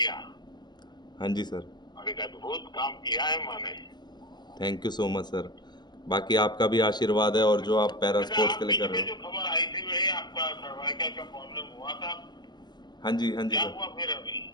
हाँ जी सर। और एक अद्भुत काम किया है माँ ने। Thank you so much sir. बाकी आपका भी आशीर्वाद है, और जो आप पैरा अच्छा, स्पोर्ट्स आप के लिए कर बीच रहे में जो हो। खबर आई थी वही आपका सर्वाइकल का प्रॉब्लम हुआ था? हाँ जी क्या सर। हुआ फिर अभी?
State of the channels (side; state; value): right; late; 0.21 ms